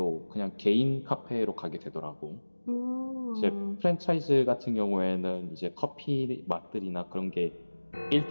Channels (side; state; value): both; inverted; correlation -1.00